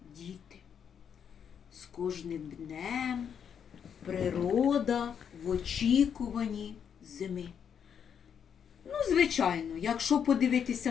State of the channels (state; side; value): quieter; right; 7.8 dB